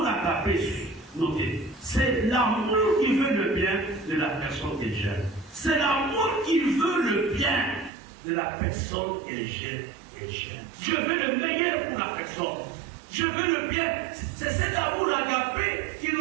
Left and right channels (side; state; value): left; drops out; at 7.9 s